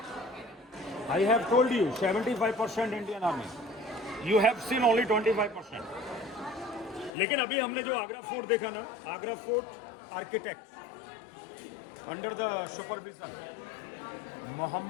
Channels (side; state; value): right; drops out; at 7.1 s